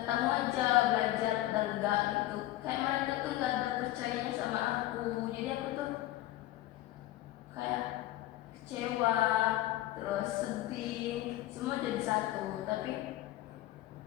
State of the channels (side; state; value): right; quieter; 15.5 dB